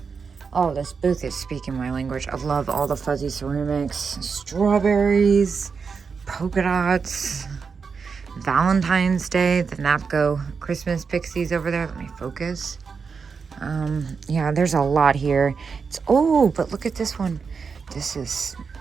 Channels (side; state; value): left; quieter; 5.5 dB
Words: Oh, this booth is speaking my language. I love all the fuzzy ceramics, strawberries, polka dots, Valentine's Day, the Napco Christmas pixies over there. Let me focus. Yeah, there's a lot here. Oh, but look at this one. This is